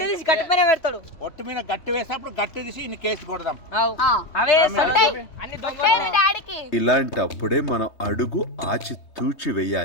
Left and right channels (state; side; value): late; right; 3.2 ms